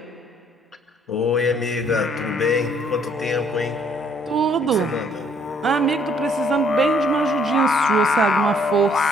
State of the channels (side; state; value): both; normal; correlation 0.64